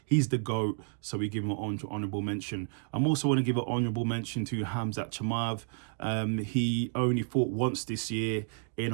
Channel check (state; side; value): silent; left; digital silence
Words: He's the GOAT, so we give him an honorable mention. I'm also want to give an honorable mention to Khamzat Chimaev. He only fought once this year in